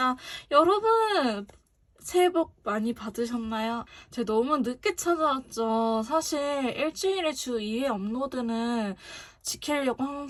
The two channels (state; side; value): identical; both; correlation 1.00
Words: 여러분, 새해 복 많이 받으셨나요? 제가 너무 늦게 찾아왔죠. 사실 일주일에 주 2회 업로드는 지키려고